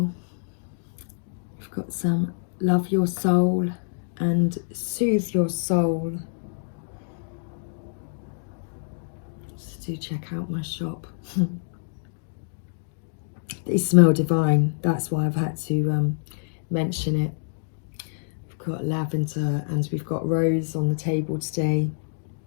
I've got some Love Your Soul and Soothe Your Soul. So do check out my shop. They smell divine, that's why I've had to mention it. We've got lavender and we've got rose on the table today.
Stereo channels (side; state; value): right; silent; digital silence